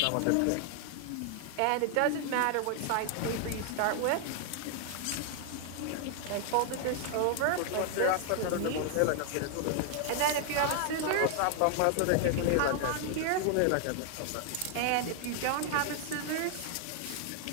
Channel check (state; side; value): different; both; correlation 0.00